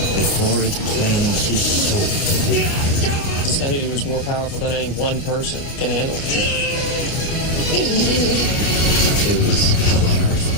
before it claims his soul? This entity was more powerful than any one person can handle. It was hell on earth.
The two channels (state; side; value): late; right; 29 ms